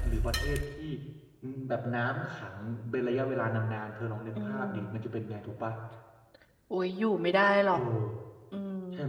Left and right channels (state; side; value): identical; both; correlation 1.00